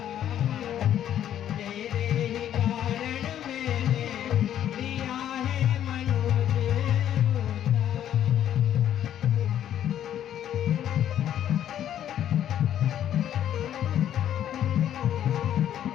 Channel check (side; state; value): right; quieter; 10.7 dB